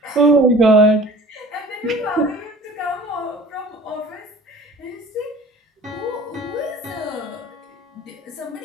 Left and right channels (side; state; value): both; normal; correlation 0.45